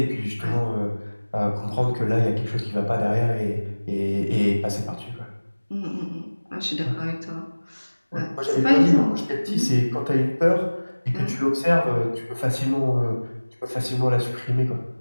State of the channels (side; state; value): both; inverted; correlation -1.00